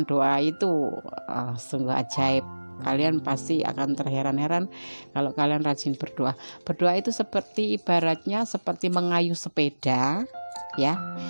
doa itu sungguh ajaib. Kalian pasti akan terheran-heran kalau kalian rajin berdoa. Berdoa itu seperti ibaratnya seperti mengayuh sepeda, ya.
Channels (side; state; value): both; inverted; correlation -1.00